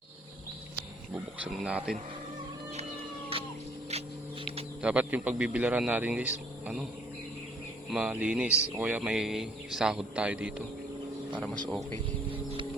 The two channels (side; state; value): both; normal; correlation 0.61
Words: Bubuksan natin. Dapat yung pagbibilaran natin guys, malinis. O kaya may sahod tayo dito para mas okay.